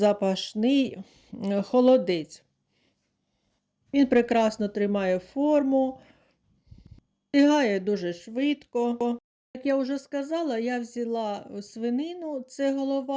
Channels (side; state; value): both; identical; correlation 1.00